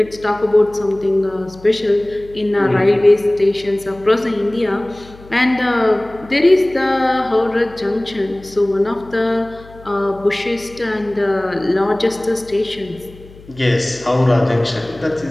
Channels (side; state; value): left; noise; hum, 21 dB below the sound